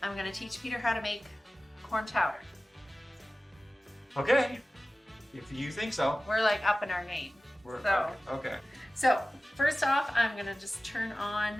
I'm going to teach Peter how to make corn chowder. Okay, if you think so. We're like up in our game. Okay. So first off, I'm going to just turn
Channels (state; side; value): normal; both; correlation 0.97